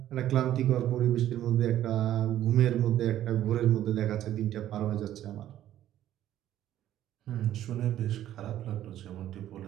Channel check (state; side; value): quieter; left; 12.3 dB